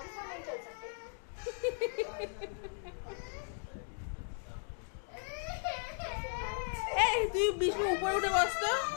এই তুই বিষ্ণু উপরে উঠে বসতো।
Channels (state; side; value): silent; right; 53 dB below the other